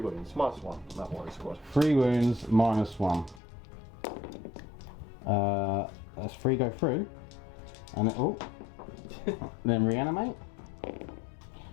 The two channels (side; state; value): right; drops out; at 3.4 s